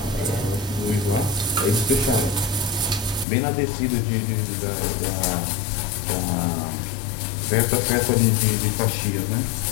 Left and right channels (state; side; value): drops out; right; at 3.2 s